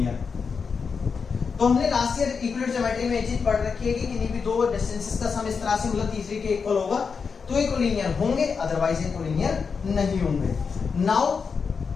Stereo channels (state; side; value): quieter; right; 5.5 dB